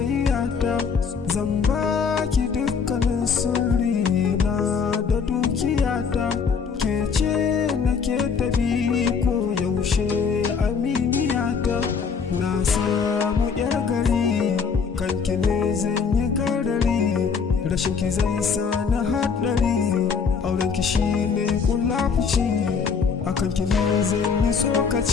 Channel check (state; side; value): quieter; right; 5.9 dB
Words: zan baki dukkanin sirri na da dukiyata, ke ce nake tabi ko yaushe aminiyata. Na samu yar gari kanki ne zan yi garari, rashin ki zai sa na haɗari, aurenki shi ne kulafuci, akan ki ne zan yi